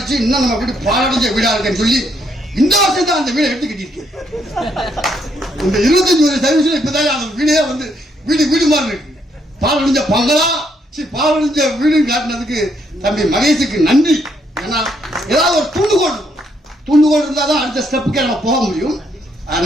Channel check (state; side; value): normal; both; correlation 0.73